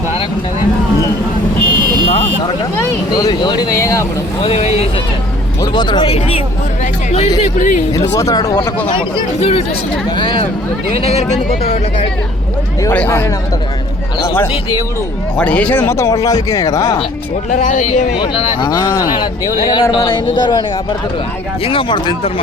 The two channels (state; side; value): normal; both; correlation 0.54